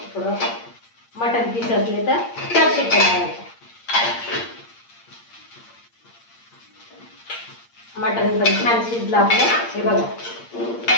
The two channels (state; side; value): late; right; 8.7 ms